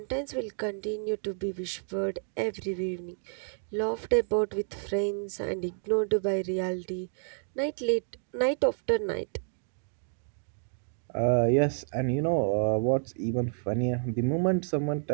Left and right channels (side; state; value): left; silent; 58 dB below the other